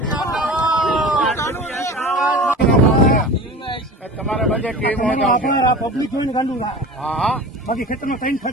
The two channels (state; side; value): normal; both; correlation 0.35